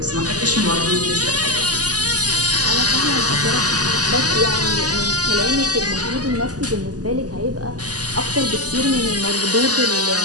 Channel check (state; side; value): late; left; 0.68 ms